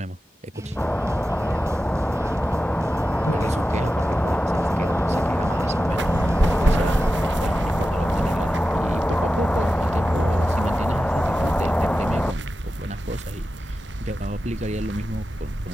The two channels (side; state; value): both; normal; correlation 0.92